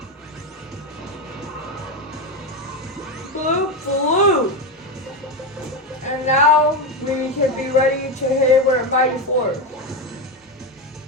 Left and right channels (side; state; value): both; normal; correlation 0.13